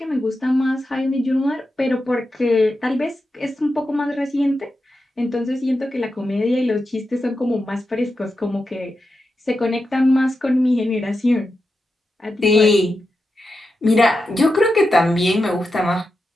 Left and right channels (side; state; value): both; normal; correlation 0.89